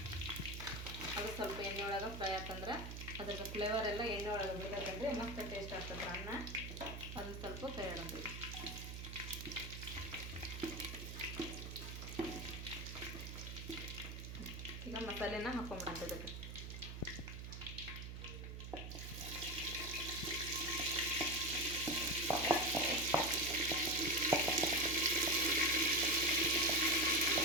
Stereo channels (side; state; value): right; noise; hum, 8 dB below the sound